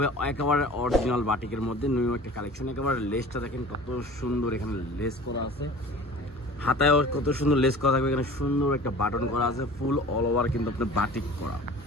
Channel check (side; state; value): both; normal; correlation 0.42